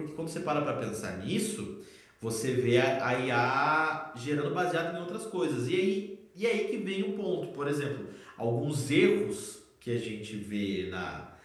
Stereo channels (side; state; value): both; identical; correlation 1.00